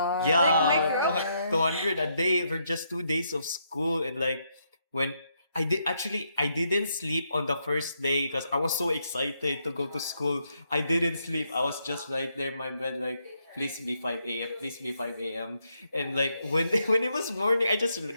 yeah, micro. 200 a day for just 2 days of school. And like when I didn't sleep on the first day because I was so excited to go to school. I didn't sleep. I was just right there in my bed like, please be 5 a.m. Please be 5 a.m. And like when when it was morning, I just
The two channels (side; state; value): both; inverted; correlation -0.77